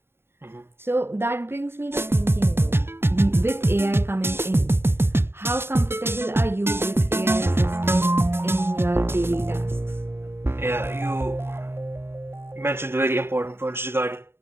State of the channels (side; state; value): left; late; 0.11 ms